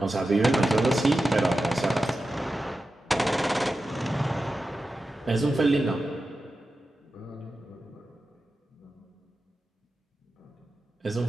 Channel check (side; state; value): both; normal; correlation 0.92